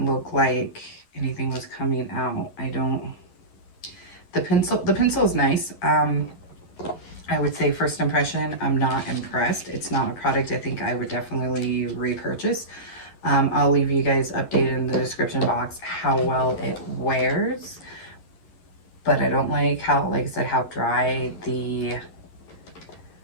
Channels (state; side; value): late; right; 11 ms